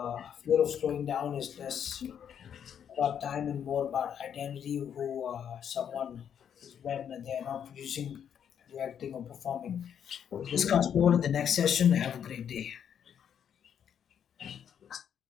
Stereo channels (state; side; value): quieter; right; 8.6 dB